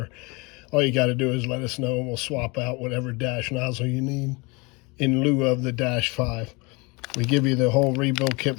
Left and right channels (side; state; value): right; quieter; 27.2 dB